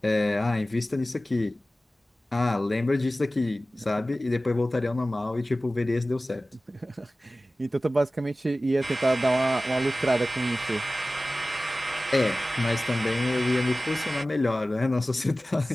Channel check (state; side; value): normal; both; correlation 0.97